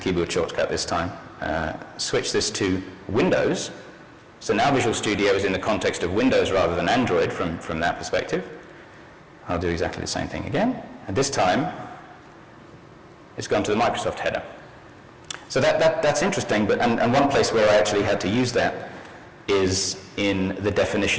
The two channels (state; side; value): identical; both; correlation 1.00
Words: keyboard shortcut this time, switch this to Windows, so now Visual Studio is in the context of Windows rather than Android from that perspective. I'll do exactly the same thing again, and this time it's gone to the Microsoft header. So that's interesting, but and one place where I actually had to use that is in the